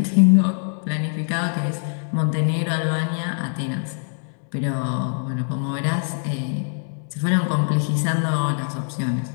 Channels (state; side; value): silent; right; digital silence